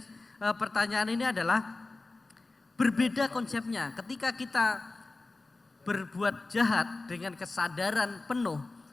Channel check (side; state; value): right; quieter; 3.4 dB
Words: pertanyaan ini adalah berbeda konsepnya. Ketika kita berbuat jahat dengan kesadaran penuh,